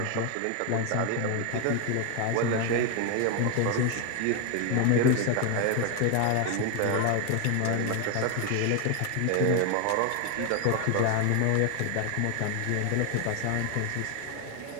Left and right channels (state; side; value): different; both; correlation 0.01